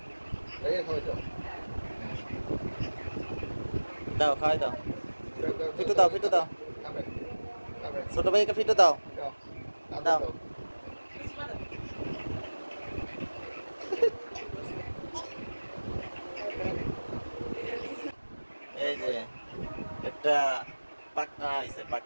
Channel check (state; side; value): inverted; both; correlation -1.00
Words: দাও খাওয়াই দাও ফিটু দাও ছোট ভাইকে ফিটু দাও দাও এই যে একটা পাকনা আইছে